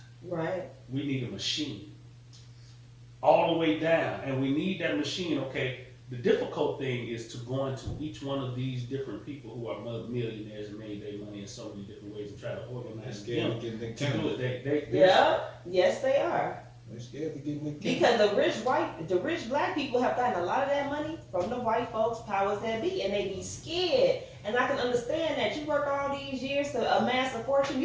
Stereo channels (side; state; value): both; identical; correlation 1.00